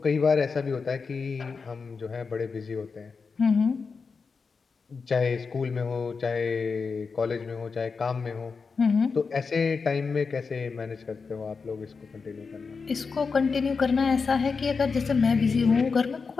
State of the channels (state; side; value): quieter; right; 5.0 dB